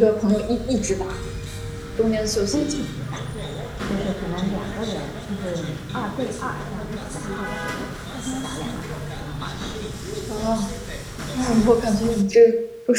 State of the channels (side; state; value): both; identical; correlation 1.00